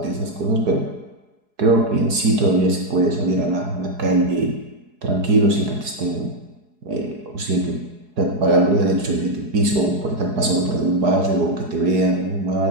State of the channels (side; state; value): left; late; 4.7 ms